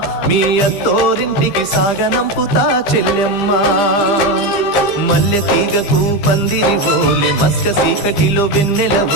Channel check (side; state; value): right; late; 15 ms